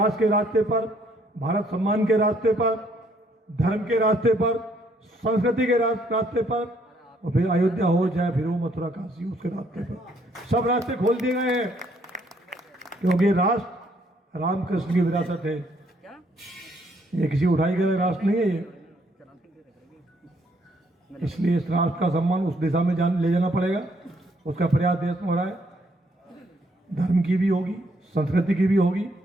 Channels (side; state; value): both; normal; correlation 0.68